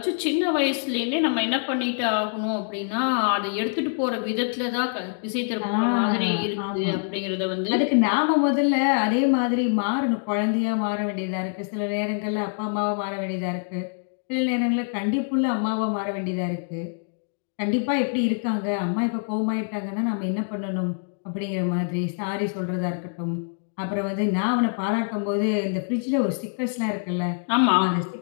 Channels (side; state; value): right; silent; 62 dB below the other